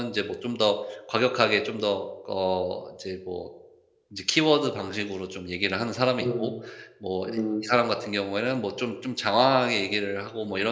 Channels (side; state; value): both; identical; correlation 1.00